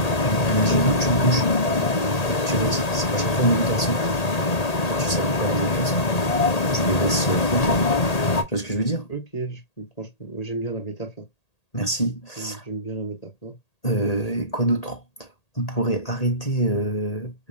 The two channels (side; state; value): right; late; 1.8 ms